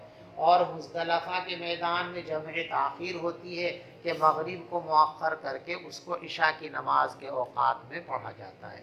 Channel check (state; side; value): identical; both; correlation 1.00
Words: اور مزدلفہ کے میدان میں جمع تاخیر ہوتی ہے کہ مغرب کو مؤخر کر کے اس کو عشاء کی نماز کے اوقات میں پڑھا جاتا